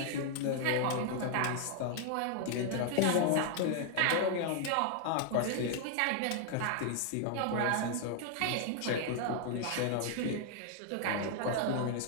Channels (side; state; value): both; different; correlation 0.00